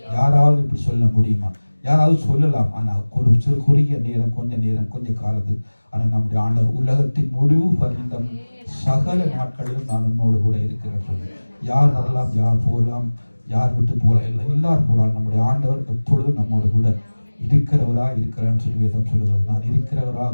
யாராவது இப்படி சொல்ல முடியுமா? யாராவது சொல்லலாம், ஆனால் ஒரு சிறு குறுகிய நேரம், கொஞ்ச காலத்து. ஆனால் நம்முடைய ஆண்டவர் உலகத்தின் முடிவு பர்யந்தம் சகல நாட்களிலும் நான் உன்னோடு கூட இருக்கிறேன் சொல்லி. யார் வரலாம், யார் போகலாம், யார் விட்டு போகலாம், இல்லை எல்லாரும் போகலாம். நம்முடைய ஆண்டவர் எப்பொழுதும் நம்மோடு கூட இருக்கிறவராக இருக்கிறான்னு சொல்லி வேதம் சொல்லுகிறது. நான்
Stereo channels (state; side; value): inverted; both; correlation -1.00